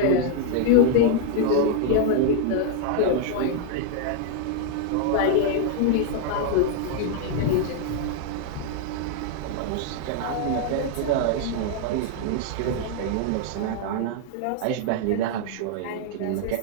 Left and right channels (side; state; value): both; different; correlation 0.00